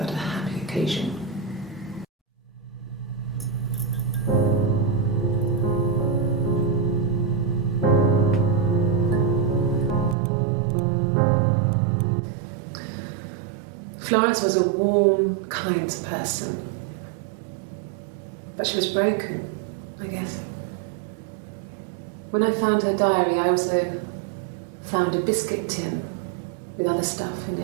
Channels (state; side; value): drops out; left; at 10.2 s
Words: a happy occasion. Florence was a warm, kind person, but she was broken, I guess. When I found her diary, I also found a biscuit tin with other stuff in